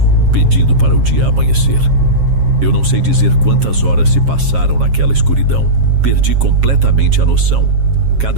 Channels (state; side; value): late; left; 7.4 ms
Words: pedindo para o dia amanhecer. Eu não sei dizer quantas horas se passaram naquela escuridão. Perdi completamente a noção.